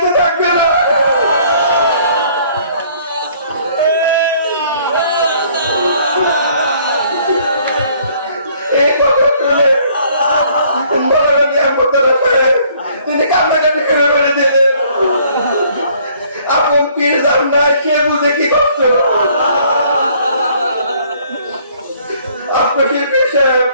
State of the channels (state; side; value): inverted; both; correlation -0.60